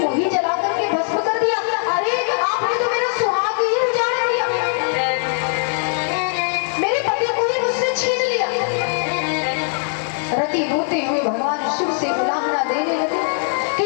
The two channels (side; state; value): right; silent; 66 dB below the other